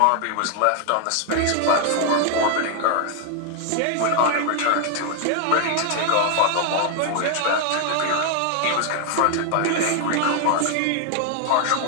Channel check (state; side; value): different; both; correlation 0.00